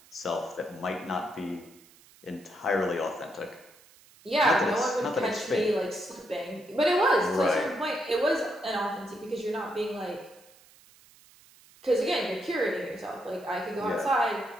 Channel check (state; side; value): noise; right; hiss, 26 dB below the sound